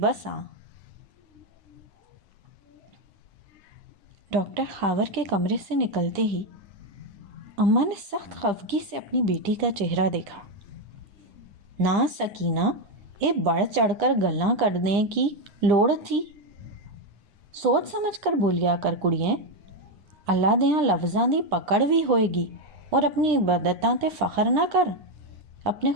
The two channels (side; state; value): left; late; 9.9 ms